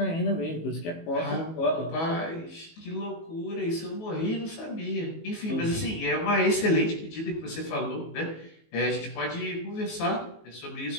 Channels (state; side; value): late; right; 19 ms